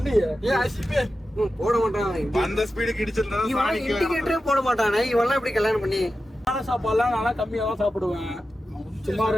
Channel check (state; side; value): normal; both; correlation 0.92